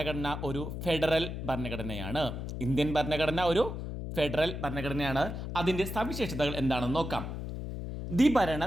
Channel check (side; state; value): left; noise; hum, 6 dB below the sound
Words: ഒരു ഫെഡറൽ ഭരണഘടനയാണ്. ഇന്ത്യൻ ഭരണഘടന ഒരു ഫെഡറൽ ഭരണഘടനയാണ്. അതിൻ്റെ സവിശേഷതകൾ എന്താണെന്ന് നോക്കാം. ദ്വിഭരണ